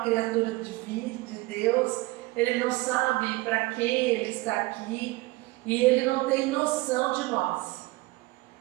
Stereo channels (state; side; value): quieter; left; 21.3 dB